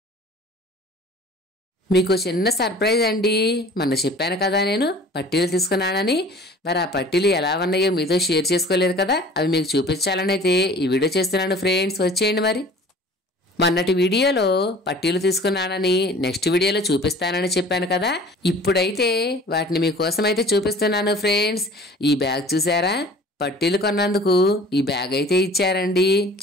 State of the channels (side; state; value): both; normal; correlation 0.46